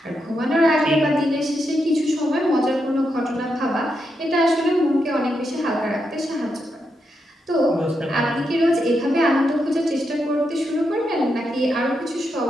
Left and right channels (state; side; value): normal; both; correlation 0.84